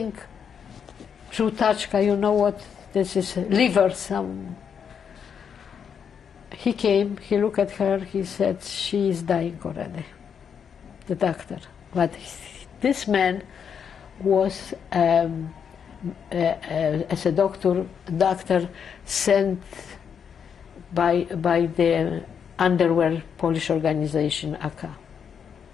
Żółtaczka, you know what? This is liver, some. He came, he looked at her, he said, she is dying already, the doctor. But this man was, as a doctor sent by the underwear Polish organization, AK.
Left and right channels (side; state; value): right; quieter; 7.3 dB